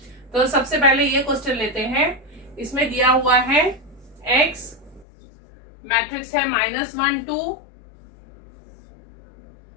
तो सबसे पहले ये क्वेश्चन लेते हैं। इसमें दिया हुआ है x, मैट्रिक्स है -1 2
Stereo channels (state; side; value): drops out; right; at 5.1 s